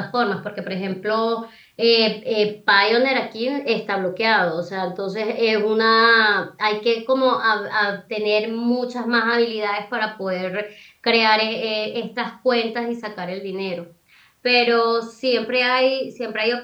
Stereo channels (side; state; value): both; identical; correlation 1.00